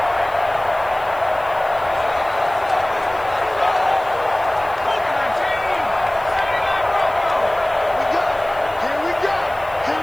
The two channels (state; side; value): noise; left; hiss, 25 dB below the sound